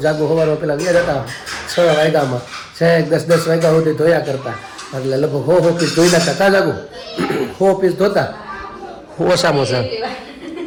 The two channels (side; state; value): both; identical; correlation 1.00